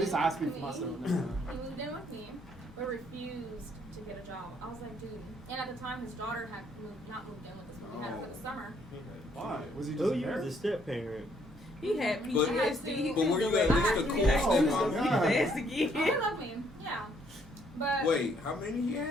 I speak for myself. he moved in with me, but refused to get a job. I was like, dude. And at the time, his daughter had not moved in with us, but we had her for the summer. Why? Was he just Oh, you was a embarrassed? step parent. He had But- PTSD. but were you at least a cool stepmom? Oh, He God. asked Oh, he again. loved me. Yeah. But Wait, how many he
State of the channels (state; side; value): normal; both; correlation 0.68